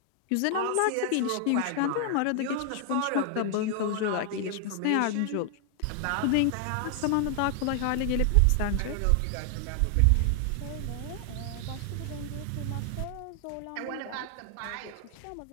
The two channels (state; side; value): different; both; correlation 0.00